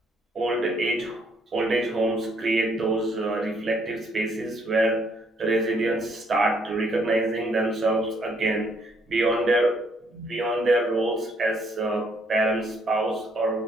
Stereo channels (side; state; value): both; normal; correlation 0.69